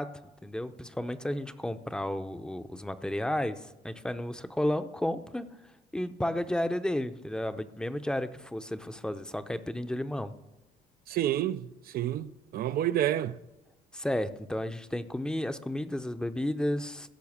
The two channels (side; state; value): both; normal; correlation 0.76